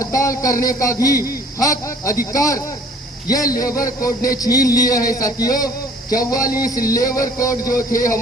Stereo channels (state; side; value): normal; both; correlation 0.54